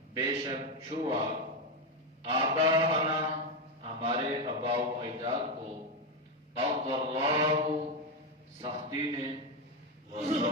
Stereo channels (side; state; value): both; normal; correlation 0.08